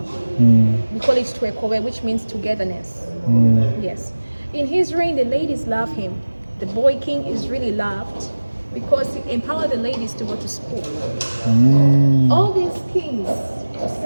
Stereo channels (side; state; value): both; inverted; correlation -1.00